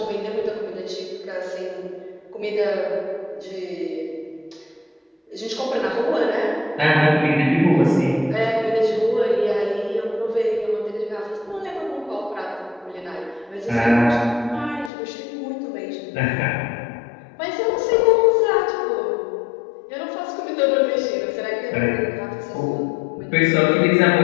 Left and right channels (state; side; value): drops out; right; at 14.9 s